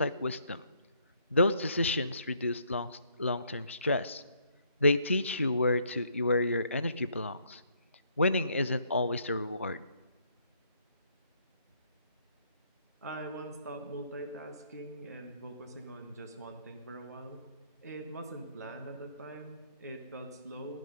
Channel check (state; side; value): inverted; both; correlation -0.68